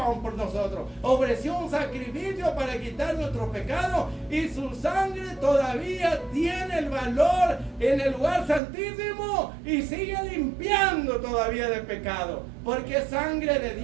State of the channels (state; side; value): drops out; left; at 8.6 s